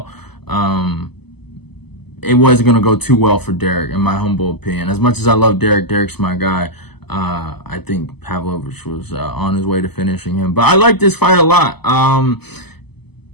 it wasn't going to go too well for Derek, in my humble opinion. As much as I love Derek, Derek's my guy. I think Pavlovich was on his way to finishing him. But I like this fight a lot.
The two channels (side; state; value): right; late; 0.98 ms